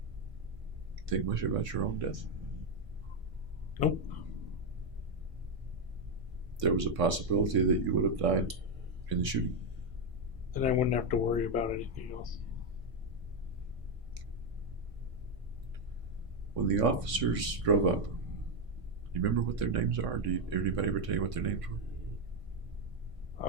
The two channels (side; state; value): left; late; 1.5 ms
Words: Think much about your own death? Nope. There was a possibility that you would have died in the shooting. Then I wouldn't have to worry about anything else. When the officers drove up, you remember what their names are? Did anybody ever tell you what their names were?